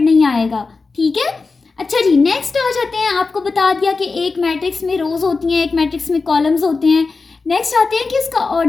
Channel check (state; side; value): quieter; right; 4.2 dB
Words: नहीं आएगा, ठीक है। अच्छा जी, नेक्स्ट आ जाते हैं। आपको बता दिया कि एक मैट्रिक्स में रोज होती हैं, एक मैट्रिक्स में कॉलम्स होते हैं। नेक्स्ट आते हैं कि उसका